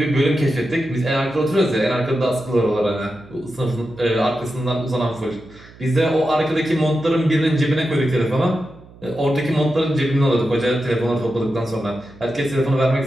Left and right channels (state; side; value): noise; right; hum, 22 dB below the sound